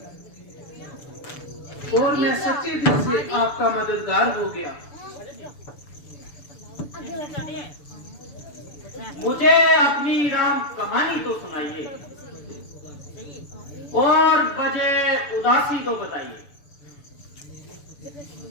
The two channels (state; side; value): late; right; 6.9 ms